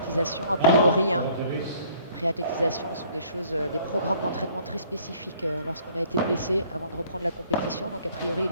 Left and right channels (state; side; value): inverted; both; correlation -0.58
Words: a priori. Hein. Réathlétisation sont des programmes d'entraînement très spécifiques lorsqu'on a été blessé avant de reprendre la compétition. Donc a priori, il